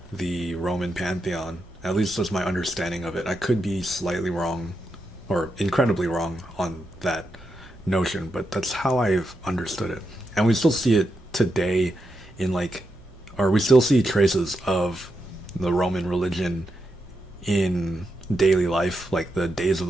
the Roman pantheon. At least that's my understanding of it. I could be slightly wrong or incredibly wrong on that notion, but that's how I've understood it. And we still see it today in like, or we still see traces of the Roman religion in daily life. Like the days of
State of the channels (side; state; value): both; normal; correlation 0.85